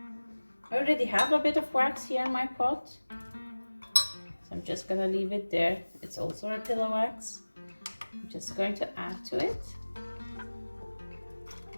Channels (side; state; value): both; inverted; correlation -1.00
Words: I already have a bit of wax here in my pot, so I'm just gonna leave it there. It's also a pillar wax. I'm just going to add to it.